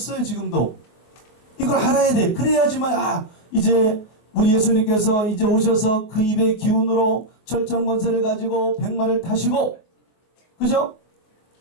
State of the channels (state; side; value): late; right; 23 ms